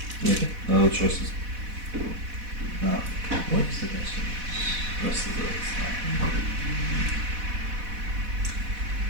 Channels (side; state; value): left; late; 4.1 ms